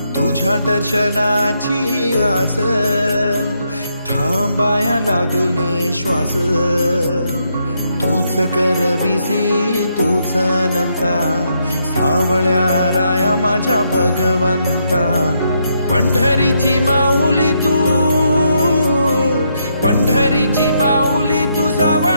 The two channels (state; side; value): inverted; both; correlation -0.77